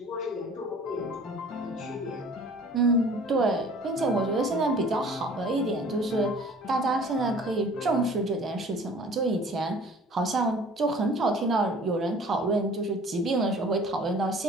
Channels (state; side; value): normal; both; correlation 0.49